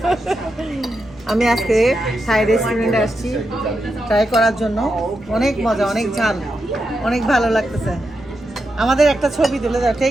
আমি আজকে থাই রেস্টুরেন্টে আসছি ট্রাই করার জন্য। অনেক মজা, অনেক ঝাল, অনেক ভালো লাগতেছে। আমাদের একটা ছবি তুলে দাও,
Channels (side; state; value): both; normal; correlation 0.86